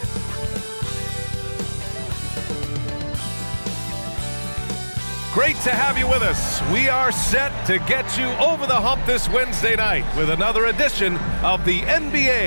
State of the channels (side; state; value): both; inverted; correlation -1.00